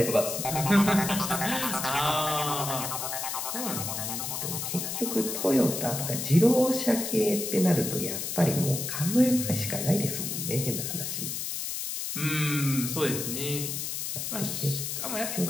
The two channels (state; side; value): noise; left; hiss, 4 dB below the sound